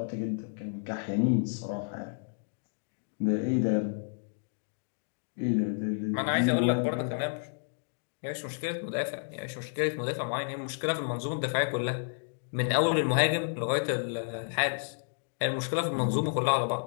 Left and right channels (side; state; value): right; silent; digital silence